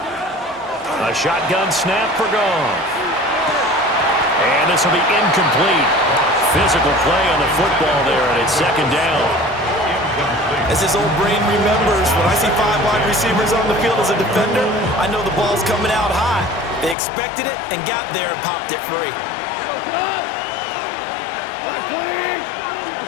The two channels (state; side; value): drops out; right; at 16.9 s